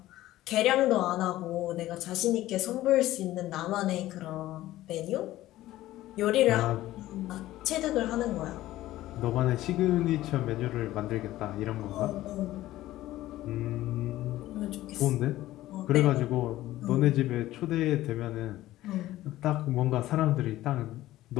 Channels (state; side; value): quieter; right; 15.4 dB